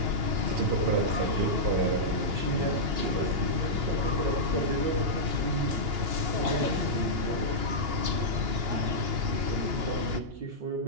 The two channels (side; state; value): left; late; 2.8 ms